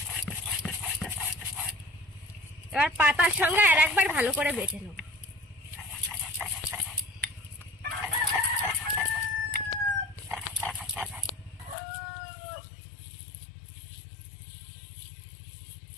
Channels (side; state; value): right; drops out; at 11.8 s